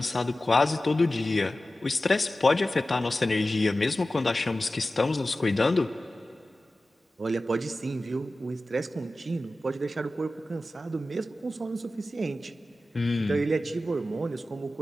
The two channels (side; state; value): both; normal; correlation 0.95